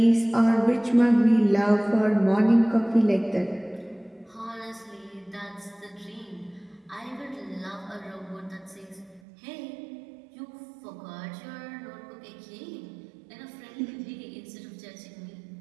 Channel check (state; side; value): drops out; left; at 9.2 s